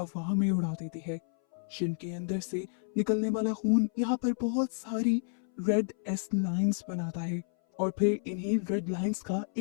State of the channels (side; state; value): right; silent; 57 dB below the other